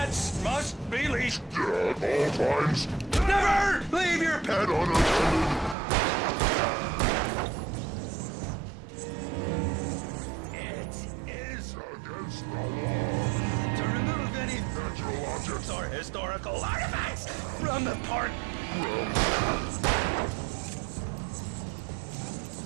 must be leashed. At all times. Never leave your pet. Pet unattended. It is Against the law. to remove any Natural objects. or historical artifacts from the park.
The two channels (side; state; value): left; drops out; at 5.8 s